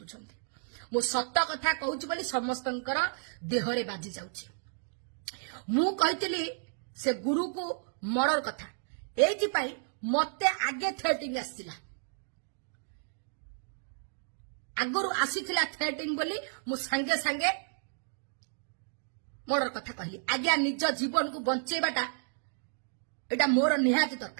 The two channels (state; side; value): silent; left; digital silence